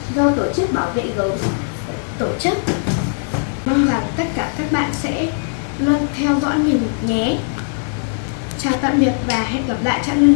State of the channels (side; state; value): right; silent; digital silence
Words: do tổ chức bảo vệ gấu tổ chức. Mong rằng tất cả các bạn sẽ luôn theo dõi mình nhé. Chào tạm biệt và hẹn gặp lại Trạng